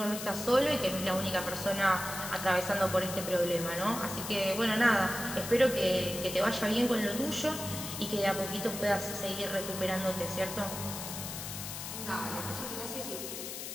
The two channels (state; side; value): noise; left; hiss, 7 dB below the sound